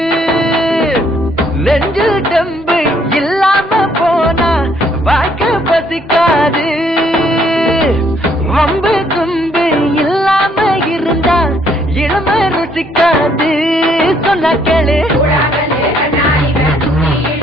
நெஞ்சில் தெம்பு இல்லாம போனா வாழ்க்கை பசிக்காது வம்பு தும்பு இல்லாம இருந்தா இளமை ருசிக்காது சொன்ன கேளு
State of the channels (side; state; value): both; normal; correlation 0.67